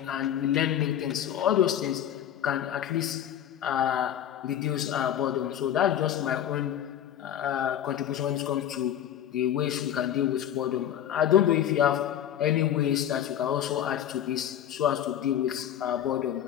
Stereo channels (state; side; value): quieter; right; 10.6 dB